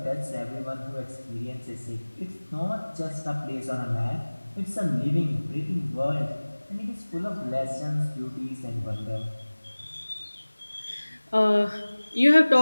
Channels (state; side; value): inverted; both; correlation -1.00